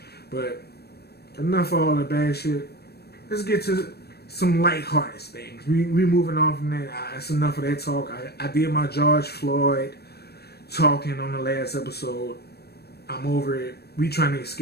But enough of all the bad shit. Let's get to some lighthearted things. We moving on from that. That's enough of that talk. I did my George Floyd talking on the last episode. I'm over it. We trying to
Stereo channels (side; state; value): right; late; 0.47 ms